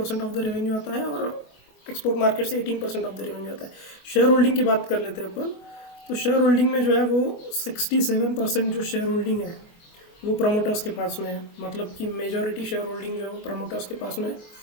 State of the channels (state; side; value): late; right; 24 ms